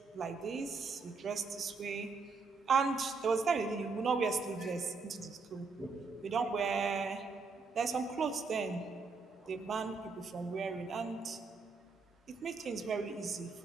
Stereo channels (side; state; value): left; quieter; 4.4 dB